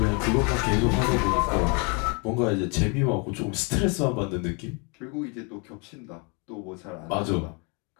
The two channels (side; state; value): right; quieter; 33.4 dB